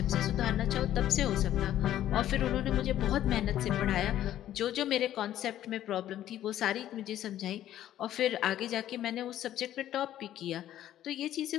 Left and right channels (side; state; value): right; quieter; 12.3 dB